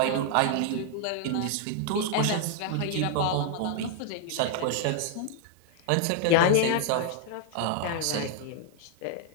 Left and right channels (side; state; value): both; different; correlation 0.00